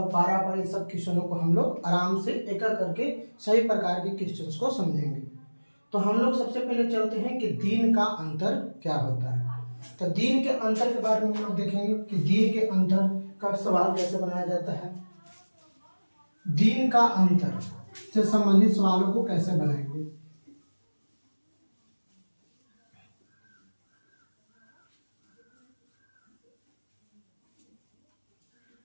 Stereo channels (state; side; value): inverted; both; correlation -1.00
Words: पारा-पारी सब क्वेश्चनों को हम लोग आराम से एक करके सभी प्रकार के क्वेश्चंस को समझेंगे। तो हम लोग सबसे पहले चलते हैं कि दिन का अंतर क्या होता है। तो दिन के अंतर के बारे में हम लोग देखेंगे कि दिन के अंतर का सवाल कैसे बनाया जाता है, दिन का अंतर से संबंधित सवालों को कैसे बनाएंगे।